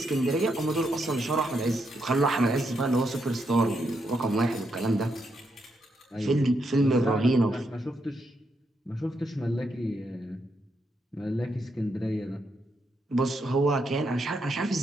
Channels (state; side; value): normal; both; correlation 0.80